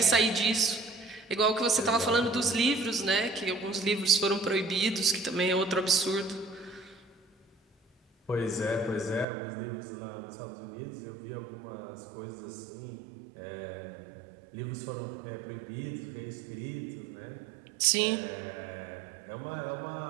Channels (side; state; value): left; drops out; at 9.2 s